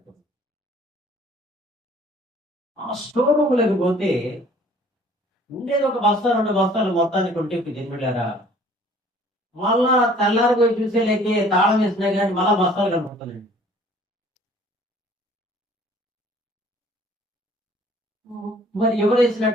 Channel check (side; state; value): both; normal; correlation 0.54